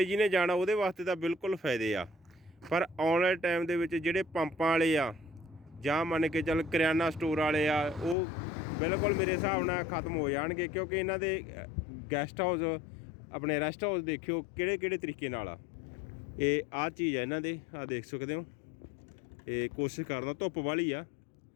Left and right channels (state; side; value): drops out; right; at 8.2 s